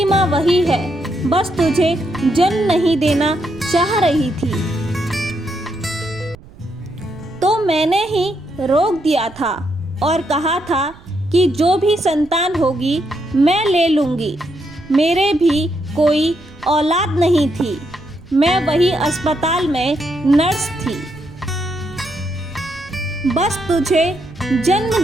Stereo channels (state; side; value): noise; right; rumble, 22 dB below the sound